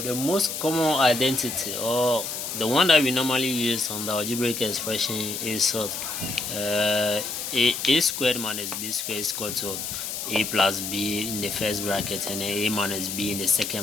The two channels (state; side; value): noise; left; hiss, 5 dB below the sound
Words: most common identity, or the one that we normally use on the algebraic expression, is a squared minus b squared is equal to a plus b in the first bracket and a minus b in the